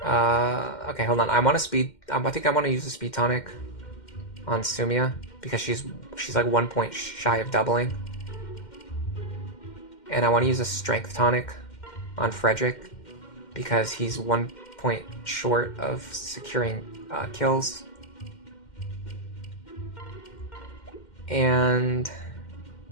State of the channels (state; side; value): late; right; 2.1 ms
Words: hold on. I want to speed. I think I want to use the speed tonic on Sumia because she's like 1 point shy of doubling, and I want to use a strength tonic on Frederick because he's 1 point short of securing kills. And